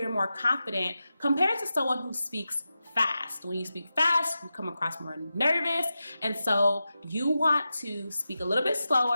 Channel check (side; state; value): both; inverted; correlation -0.92